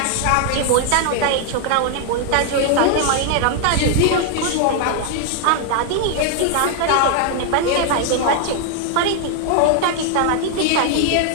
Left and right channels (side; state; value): both; different; correlation 0.00